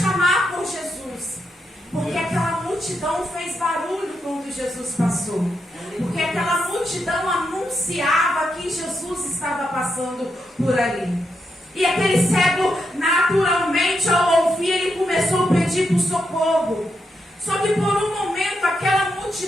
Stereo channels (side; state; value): both; normal; correlation 0.83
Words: por Jesus. Porque aquela multidão fez barulho quando Jesus passou. Porque aquela multidão anunciava que Jesus estava passando por ali. E aquele cego, naturalmente, ao ouvir, ele começou a pedir por socorro. Só que por um momento, aquela